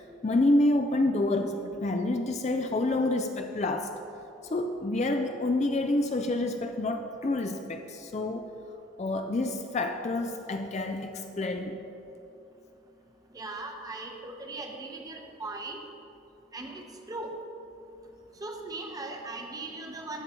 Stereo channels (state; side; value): normal; both; correlation 0.63